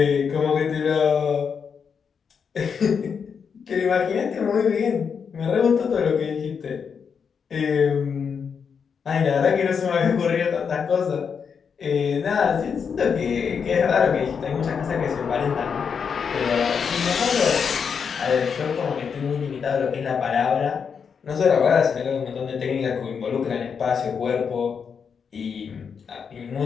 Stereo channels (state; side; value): quieter; right; 6.5 dB